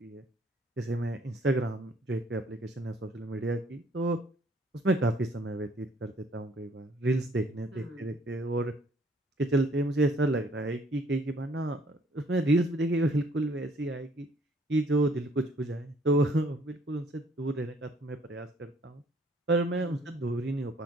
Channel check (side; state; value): both; normal; correlation 0.61